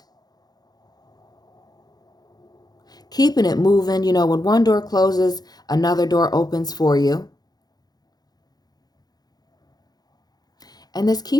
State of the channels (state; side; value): late; right; 0.19 ms